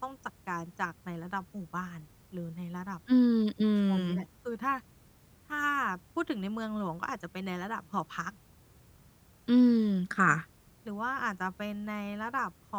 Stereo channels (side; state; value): both; identical; correlation 1.00